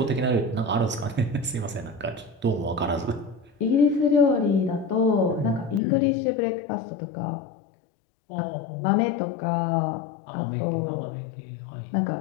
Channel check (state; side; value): drops out; right; at 5.8 s